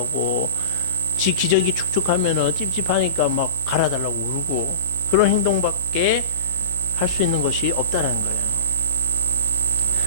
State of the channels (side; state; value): both; inverted; correlation -0.40